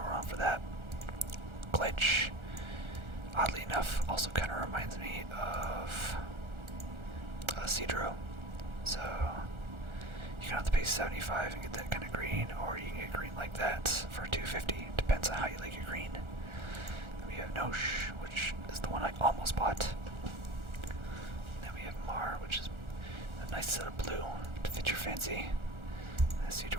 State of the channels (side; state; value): left; late; 1.4 ms